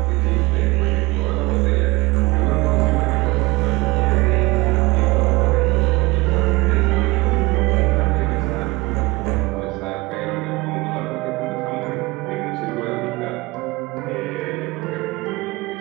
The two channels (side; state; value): left; quieter; 23.0 dB